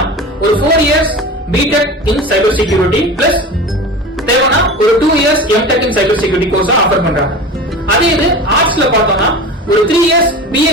ஒரு 4 years BTech in cyber security plus தேவைன்னா ஒரு 2 years MTech in cyber security course offer பண்றாங்க. அதே இது ஆர்ட்ஸ்ல பார்த்தோம்னா ஒரு 3 years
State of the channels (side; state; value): both; normal; correlation 0.32